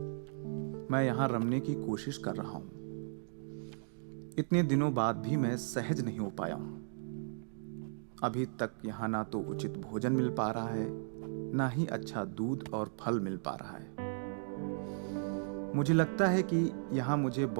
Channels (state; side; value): silent; left; digital silence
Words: मैं यहाँ रमने की कोशिश कर रहा हूँ। इतने दिनों बाद भी मैं सहज नहीं हो पाया हूँ। अभी तक यहाँ ना तो उचित भोजन मिल पा रहा है, ना ही अच्छा दूध और फल मिल पा रहा है। मुझे लगता है कि यहाँ मुझे